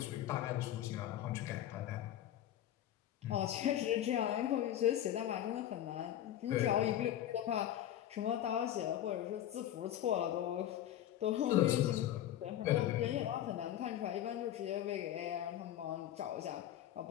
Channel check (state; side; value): quieter; right; 11.9 dB